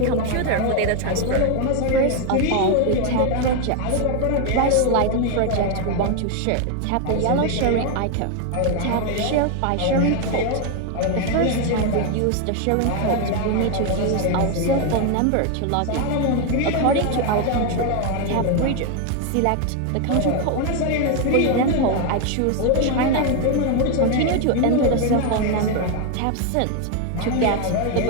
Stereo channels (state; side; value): different; both; correlation 0.01